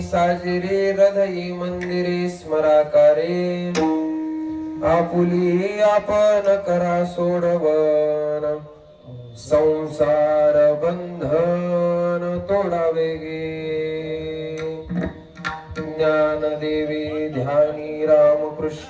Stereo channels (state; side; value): identical; both; correlation 1.00